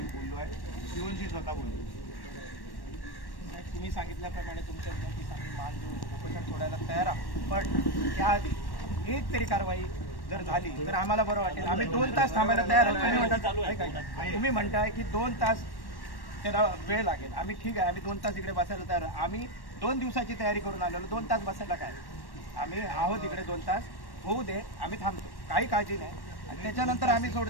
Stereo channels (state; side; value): late; right; 1.1 ms